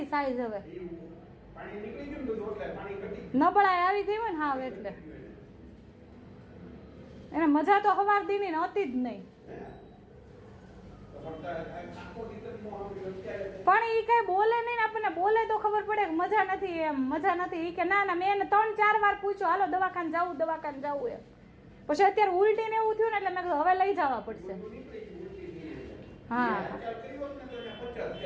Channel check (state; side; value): identical; both; correlation 1.00